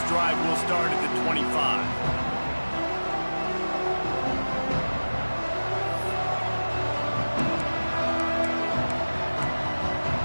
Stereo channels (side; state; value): both; inverted; correlation -1.00